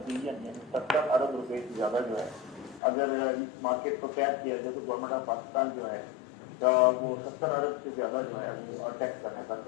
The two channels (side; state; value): right; drops out; at 2.8 s